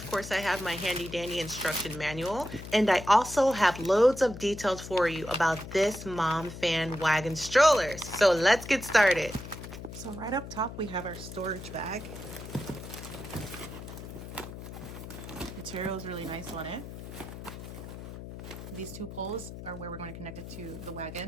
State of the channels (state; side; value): noise; left; hum, 11 dB below the sound